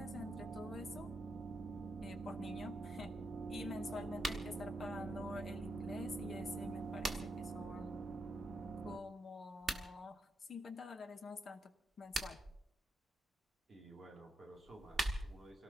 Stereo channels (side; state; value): both; normal; correlation 0.82